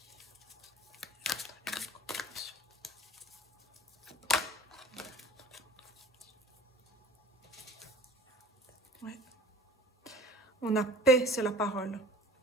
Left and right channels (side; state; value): both; normal; correlation 0.45